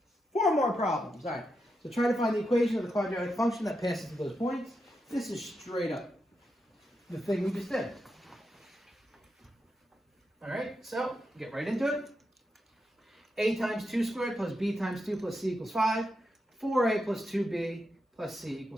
4 more problems. All right. So try to find the equation of the quadratic function that passes through those points. This is straight up the thing we just did. All right. So get right into it. A times 2 squared plus B times 2 plus C equals 5. 4A plus 2B plus C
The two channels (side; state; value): both; normal; correlation 0.85